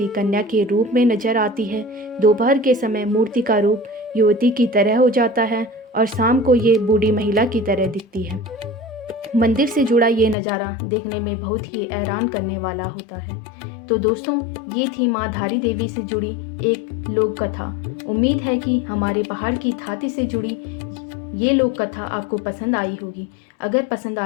कन्या के रूप में नजर आती है, दोपहर के समय मूर्ति का रूप युवती की तरह हो जाता है और शाम को ये बूढ़ी महिला की तरह दिखती है। मंदिर से जुड़ा ये नज़ारा देखने में बहुत ही हैरान करने वाला होता है। तो दोस्तों, ये थी माँ धारी देवी से जुड़ी एक लोक कथा। उम्मीद है कि हमारे पहाड़ की थाती से जुड़ी ये लोक कथा आपको पसंद आई होगी। अगर पसंद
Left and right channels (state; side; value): drops out; right; at 10.4 s